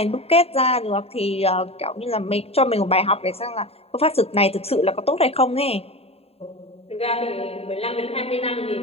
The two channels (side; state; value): right; late; 0.29 ms